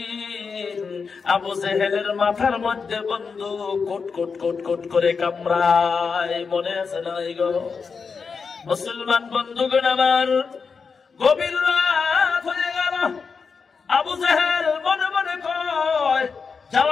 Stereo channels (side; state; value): right; quieter; 5.3 dB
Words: আবু জেহেলের মাথার মধ্যে বন্ধু কোট কোট কোট কোট করে কামড়ায়। মনে আছে না গো মুসলমান বন্ধুগণ আমার? গভীর রাত হয়ে গেল, আবু জেহেল মনে মনে কয়,